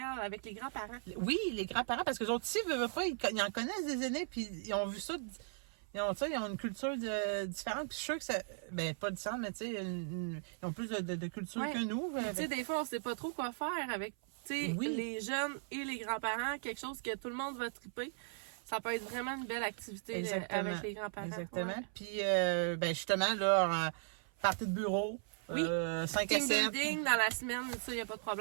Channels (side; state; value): left; silent; 53 dB below the other